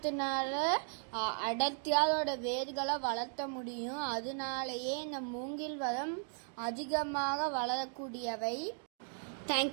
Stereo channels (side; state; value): left; silent; 53 dB below the other